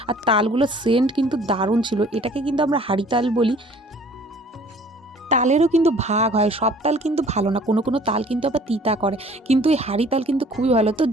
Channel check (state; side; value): normal; both; correlation 0.53